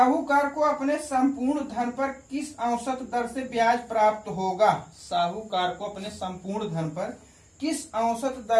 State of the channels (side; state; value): both; identical; correlation 1.00